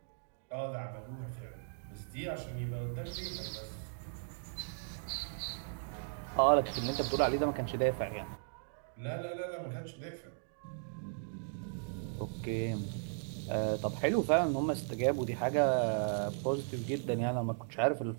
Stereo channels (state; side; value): silent; left; digital silence